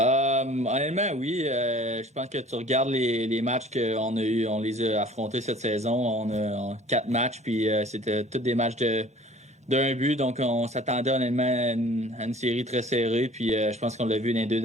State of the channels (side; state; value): both; normal; correlation 0.49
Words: oui. Je pense que tu regardes les matchs qu'on a eu, on les a affrontés cette saison. On a 4 matchs, puis c'était tous des matchs d'un but. Donc, on s'attendait honnêtement à une série très serrée. Puis je pense qu'on l'a vu dans les 2